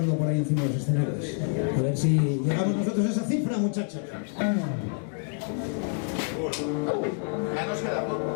por ahí encima de los escenarios. A ver si llegamos nosotros a esa cifra, muchachos. Ya nos queda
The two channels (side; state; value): right; silent; 59 dB below the other